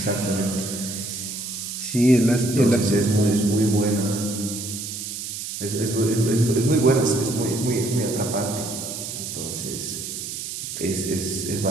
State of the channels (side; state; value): right; noise; hiss, 7 dB below the sound